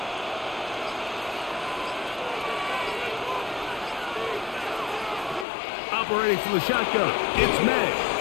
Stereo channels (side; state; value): right; drops out; at 5.5 s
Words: Operating from the shotgun, it's May.